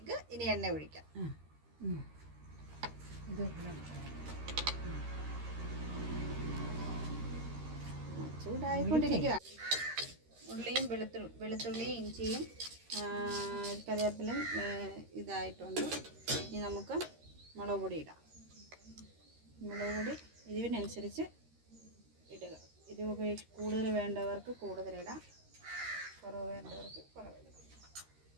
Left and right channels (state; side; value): late; left; 13 ms